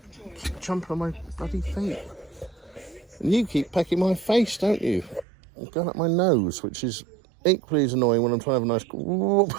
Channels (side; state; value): left; drops out; at 5.2 s